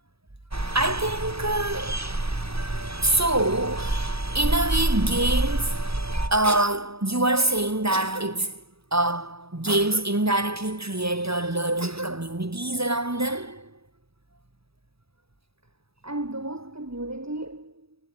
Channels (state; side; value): late; left; 0.77 ms